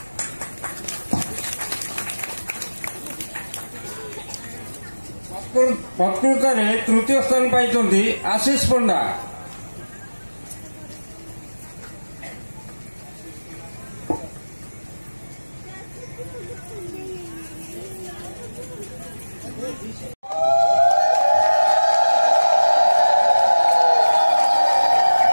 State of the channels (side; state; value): both; inverted; correlation -1.00